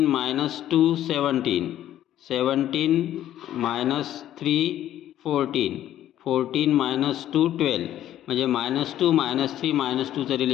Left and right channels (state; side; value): quieter; right; 12.2 dB